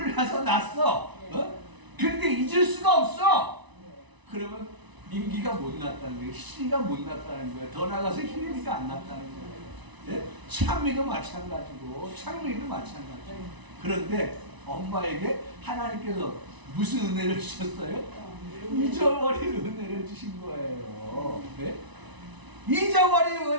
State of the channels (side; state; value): left; late; 1.0 ms